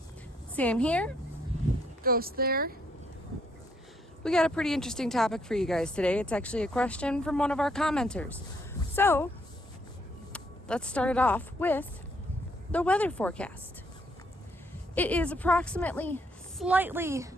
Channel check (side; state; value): both; normal; correlation 0.71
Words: Sam here, Ghost there. We got a pretty interesting topic for you guys today. It's actually a question from one of our commenters. So, let's start it off with the weather forecast. It is approximately slightly